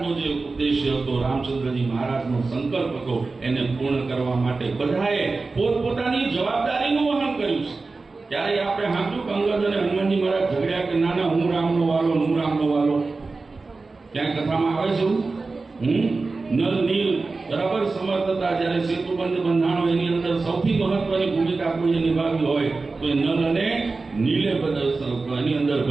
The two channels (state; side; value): quieter; left; 3.8 dB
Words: જે ઉદ્દેશ્ય હતો, રામચંદ્રજી મહારાજનો સંકલ્પ હતો, એને પૂર્ણ કરવા માટે બધાએ પોતપોતાની જવાબદારીનું વહન કર્યું છે. ત્યારે આપણે સાંભળ્યું કે અંગદ અને હનુમાનજી મહારાજ ઝઘડ્યા કે ના હું રામનો વાલો, હું રામનો વાલો? ક્યાં કથામાં આવે છે? નલ નીલ બરાબર સમર્થ હતા. જ્યારે સેતુબંધ બંધાણો એની અંદર સૌથી મહત્વની ભૂમિકા કોઈએ નિભાવી હોય તો એ નલ અને નીલે એની અંદર